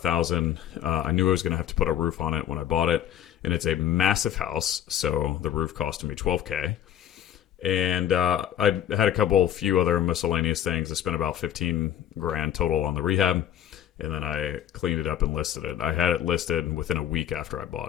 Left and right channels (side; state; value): right; quieter; 10.8 dB